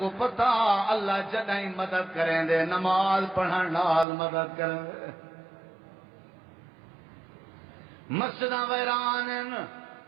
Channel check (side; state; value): left; drops out; at 4.0 s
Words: پتا اللہ جدائیں مدد کریں دے نماز پڑھن نال مدد کریں دے مسجداں ویران